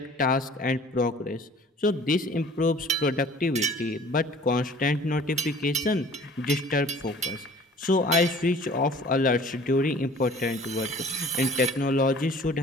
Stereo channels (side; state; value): both; normal; correlation 0.49